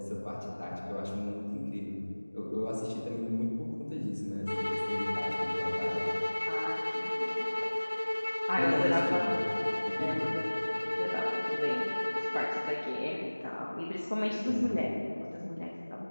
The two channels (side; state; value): both; inverted; correlation -1.00